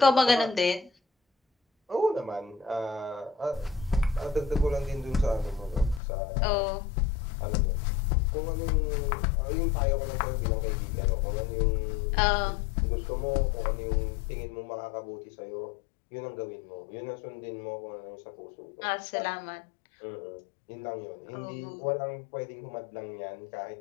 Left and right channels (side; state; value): right; drops out; at 6.0 s